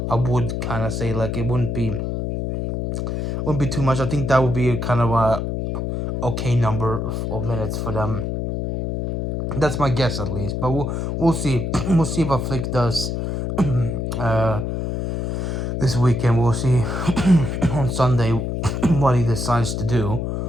would kind of say like it wouldn't be too much. I think that would be kind of a okay number of minutes for them. That's my guess at least, but we'll see. We'll see what Flick does uh, this weekend. We'll see on Sunday what he decides to do.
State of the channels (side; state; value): left; noise; hum, 2 dB below the sound